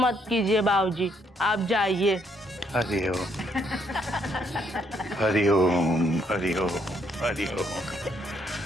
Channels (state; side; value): normal; both; correlation 0.71